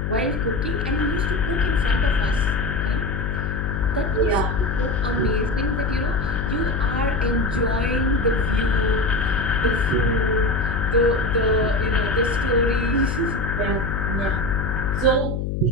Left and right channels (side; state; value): left; noise; hum, 2 dB below the sound